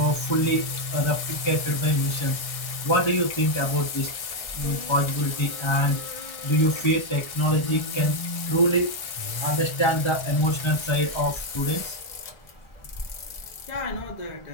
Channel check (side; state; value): right; late; 1.4 ms